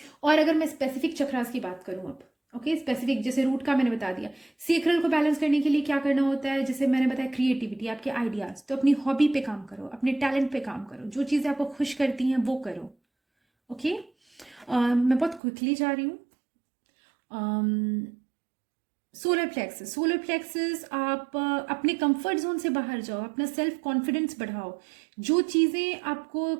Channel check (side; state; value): left; drops out; at 15.4 s